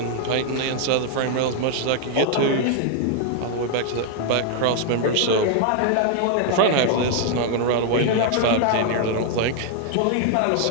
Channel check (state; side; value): different; both; correlation 0.00